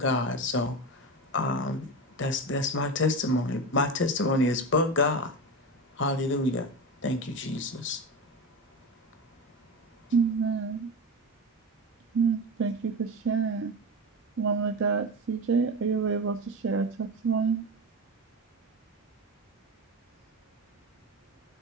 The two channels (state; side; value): normal; both; correlation 0.22